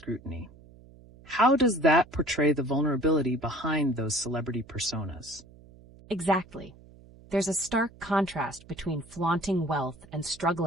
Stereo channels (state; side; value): noise; right; hum, 23 dB below the sound